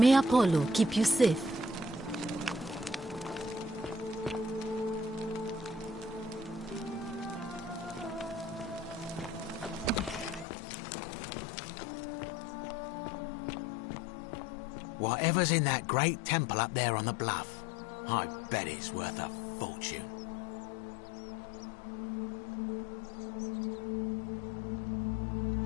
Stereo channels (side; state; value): right; drops out; at 10.5 s